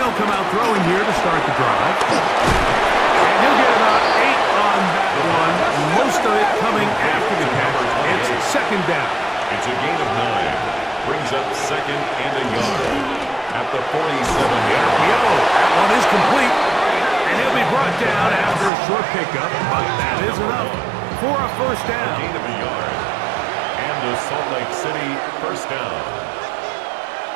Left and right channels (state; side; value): drops out; left; at 18.7 s